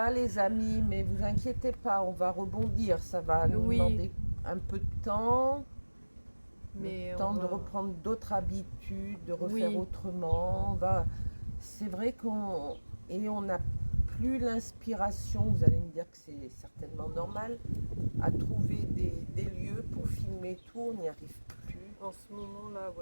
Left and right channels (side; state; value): both; inverted; correlation -1.00